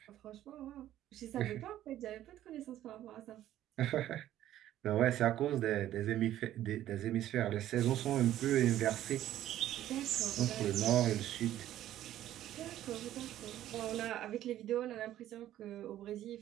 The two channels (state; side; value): quieter; left; 12.8 dB